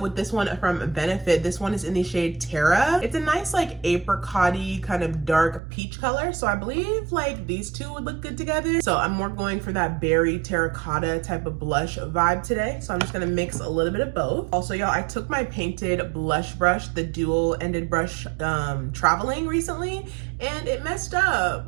with this one from Benefit. This one is in the shade Terra. It's a nice like apricot-y kind of dark peach color. So I believe like these two would look good together. So I'm more going for that berry terracotta type of blush vibe today. So I'm just gonna mix a little bit of both. Also, y'all, I took my painted blush brush, the dual ended brush, traveling recently, and it messed up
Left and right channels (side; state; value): left; drops out; at 5.6 s